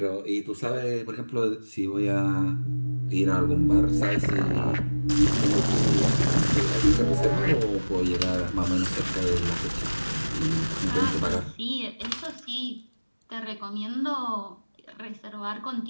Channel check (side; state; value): both; inverted; correlation -1.00